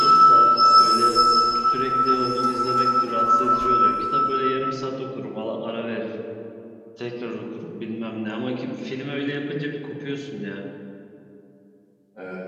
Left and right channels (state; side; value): identical; both; correlation 1.00